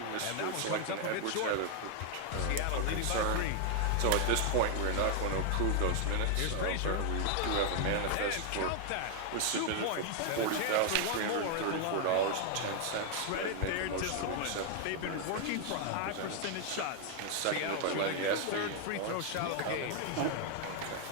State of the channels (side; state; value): both; different; correlation 0.00